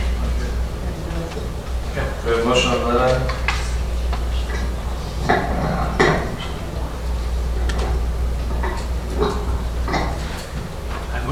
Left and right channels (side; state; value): both; identical; correlation 1.00